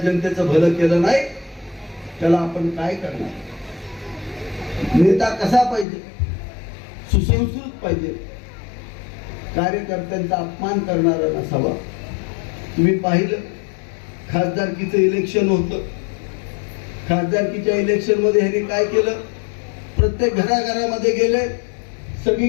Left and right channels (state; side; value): drops out; right; at 5.9 s